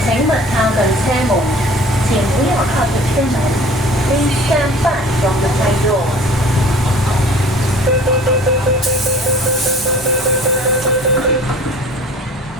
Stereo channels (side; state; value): both; normal; correlation 0.47